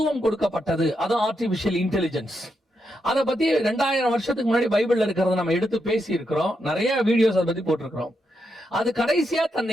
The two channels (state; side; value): normal; both; correlation 0.83